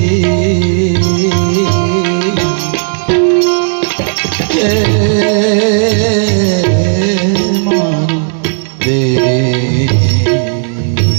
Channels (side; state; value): left; silent; digital silence